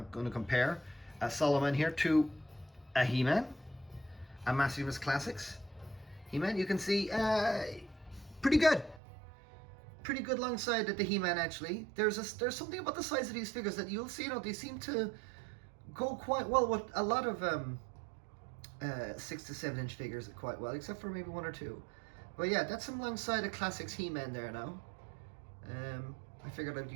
going to compare Solomon here to a He-Man, a Maximus Classics He-Man. You can see pretty good alongside the He-Man. Actually, there's something about the size of these figures that you'll see. You know, they seem to go quite well with a lot of 6 to 7 inch figures quite well, except for maybe one or two. But yeah, that's alongside a Classics He-Man there now. I figured I'd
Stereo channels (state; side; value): drops out; left; at 9.0 s